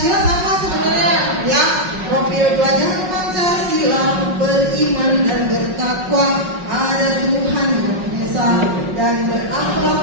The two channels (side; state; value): left; late; 5.4 ms